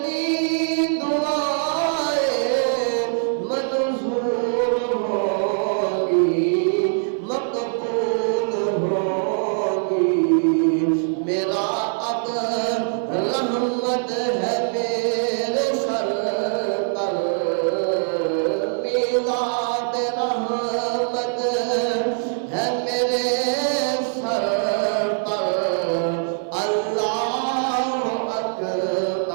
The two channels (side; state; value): left; silent; digital silence